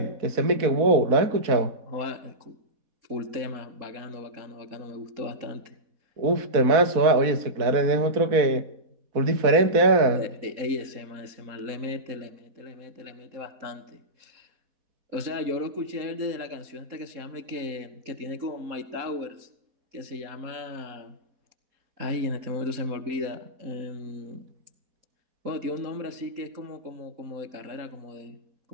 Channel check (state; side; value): late; left; 4.1 ms